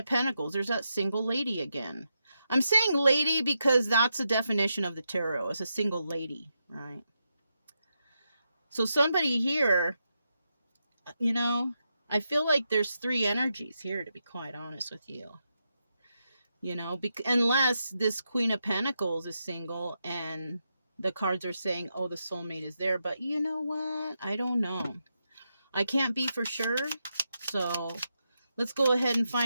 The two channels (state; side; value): inverted; both; correlation -0.85